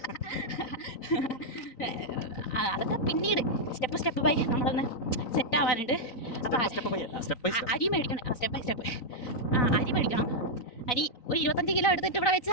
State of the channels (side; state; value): right; late; 3.9 ms